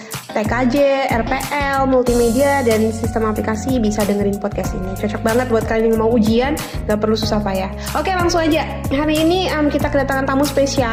TKJ, RPL, multimedia, dan sistem aplikasi bisa dengerin podcast ini. Cocok banget buat kalian yang mau ujian, gak perlu susah payah. Oke, langsung aja. Hari ini kita kedatangan tamu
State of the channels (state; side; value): identical; both; correlation 1.00